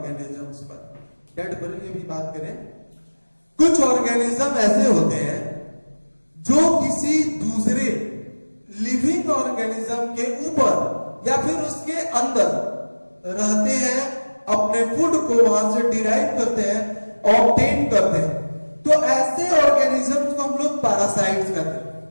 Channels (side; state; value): both; inverted; correlation -1.00